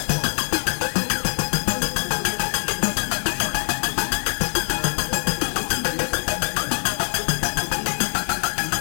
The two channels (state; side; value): silent; right; 63 dB below the other